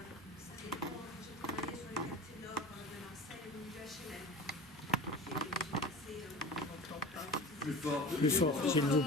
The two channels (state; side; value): normal; both; correlation 0.34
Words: Plus fort, s'il vous